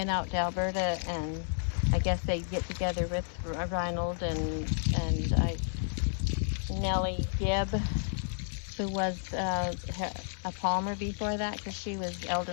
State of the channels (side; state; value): right; silent; digital silence